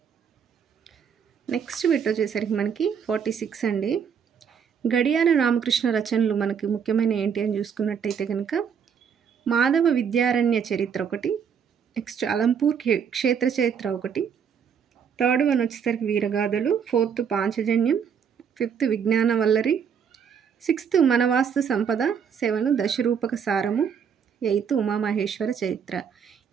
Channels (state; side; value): quieter; left; 7.3 dB